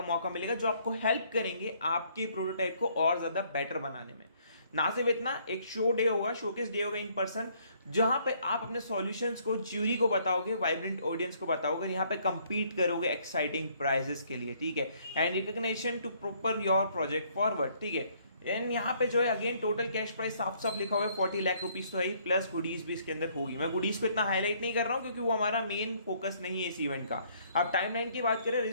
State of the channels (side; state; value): both; inverted; correlation -0.65